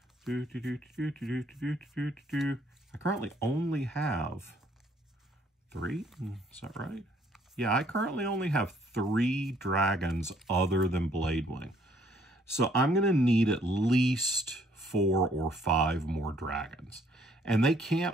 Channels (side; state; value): both; normal; correlation 0.64